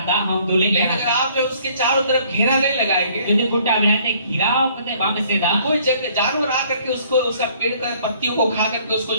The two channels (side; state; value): both; inverted; correlation -0.59